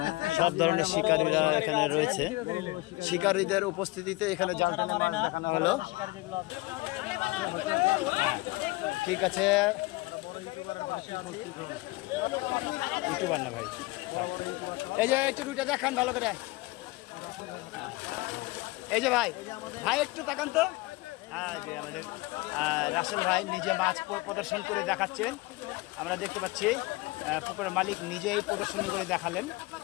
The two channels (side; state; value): right; quieter; 22.1 dB